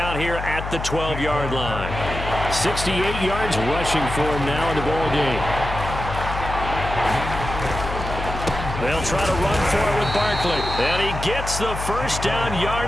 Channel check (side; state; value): left; noise; hum, 6 dB below the sound